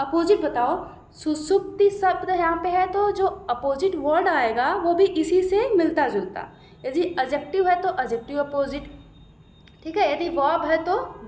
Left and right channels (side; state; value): both; identical; correlation 1.00